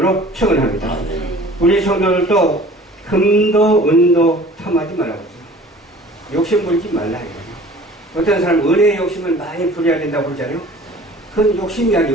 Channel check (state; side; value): normal; both; correlation 0.47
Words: 축원합니다. 우리 성도들도 금도 은도 탐하지 말라고 했어요. 욕심 부리지 말라 이거예요. 어떤 사람은 은혜의 욕심을 많이 부려야 된다고 그러잖아요. 그건 욕심이